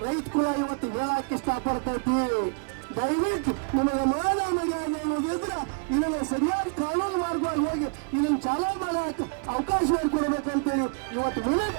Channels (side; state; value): left; quieter; 38.5 dB